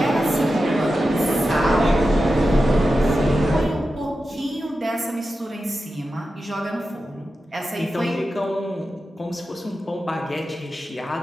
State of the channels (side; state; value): both; normal; correlation 0.91